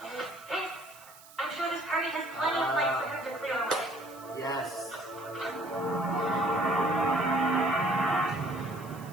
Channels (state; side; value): noise; right; hiss, 21 dB below the sound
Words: There's this. I'm sure this party has plenty of light for him to clear away. Yes.